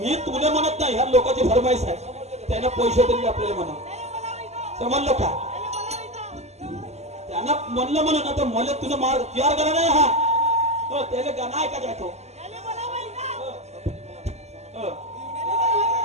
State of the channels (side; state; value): left; late; 0.32 ms